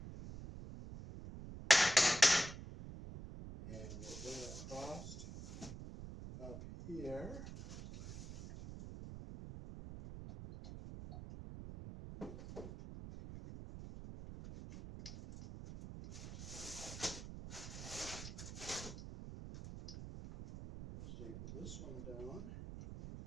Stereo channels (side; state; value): right; noise; rumble, 10 dB below the sound